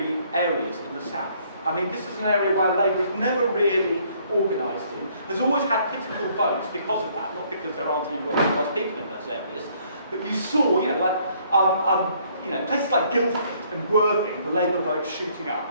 areas in the south. I mean, this is an area where Labour has never really organised in. There's always had pitiful votes because of that, not because there aren't any working class people in those areas. But you saw, places like Guildford and Worthing, the Labour vote shooting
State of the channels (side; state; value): both; inverted; correlation -0.64